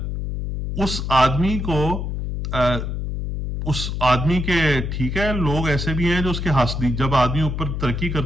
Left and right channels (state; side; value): noise; left; hum, 3 dB below the sound